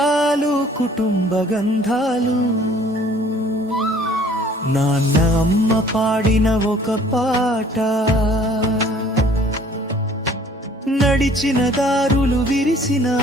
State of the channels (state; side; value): normal; both; correlation 0.55